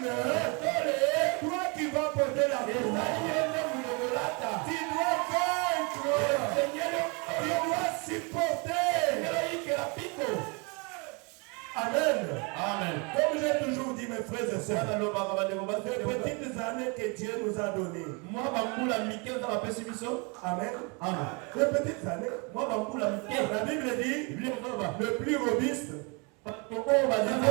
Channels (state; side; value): quieter; left; 31.7 dB